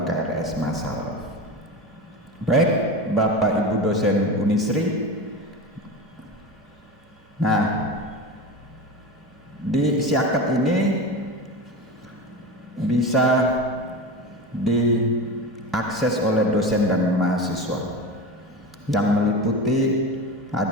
KRS massal. Baik, Bapak Ibu dosen Unisri. Nah, di Siakat ini bisa diakses oleh dosen dan mahasiswa yang meliputi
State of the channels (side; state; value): both; normal; correlation 0.26